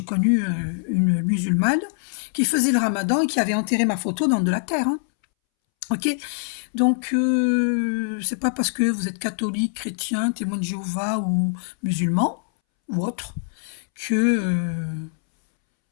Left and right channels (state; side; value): silent; right; 63 dB below the other